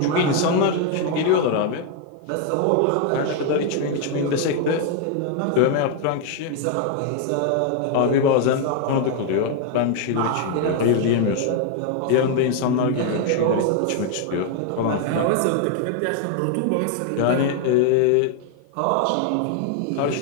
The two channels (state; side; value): different; both; correlation 0.00